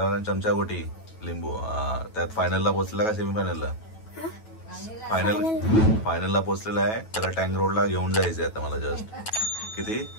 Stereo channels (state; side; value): late; right; 9.2 ms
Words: चमचा गोटी लिंबू त्यात फायनलला पोहोचलेला का सेमी फायनलला? फायनलला पोहोचलेला आहे। त्याला टँक रोडला घेऊन जायचंय आता मला। जस्ट किती